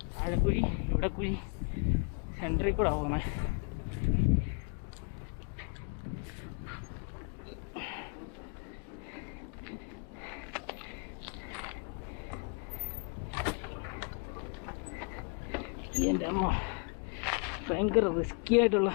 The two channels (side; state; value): right; quieter; 36.7 dB